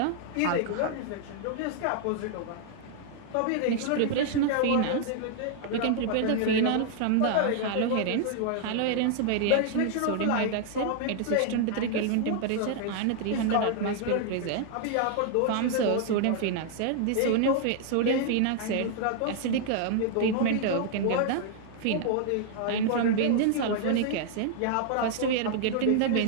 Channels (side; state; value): both; different; correlation 0.00